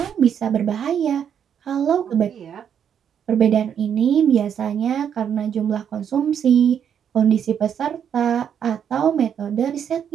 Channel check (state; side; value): quieter; left; 8.4 dB